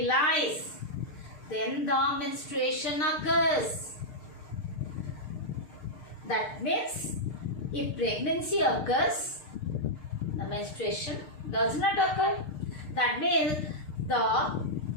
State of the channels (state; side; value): late; right; 6.6 ms